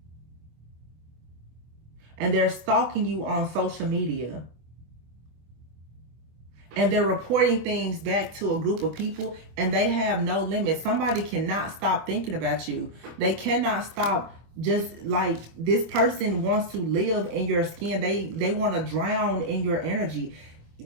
And they're stalking you on social media. And they're reporting things back to a group of people, and they have no limit. Somebody cannot stop thinking about you. They cannot stop. Just like this person wants to live in your skin. They want to drown in your energy.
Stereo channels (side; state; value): left; late; 25 ms